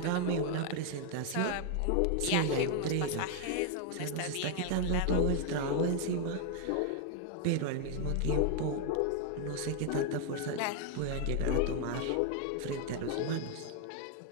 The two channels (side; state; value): both; different; correlation 0.00